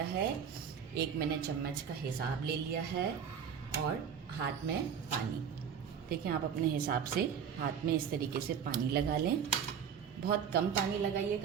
है। एक मैंने चम्मच का हिसाब ले लिया है और हाथ में पानी, देखें आप अपने हिसाब से हाथ में इस तरीके से पानी लगा लें। बहुत कम पानी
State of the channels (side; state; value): left; quieter; 7.5 dB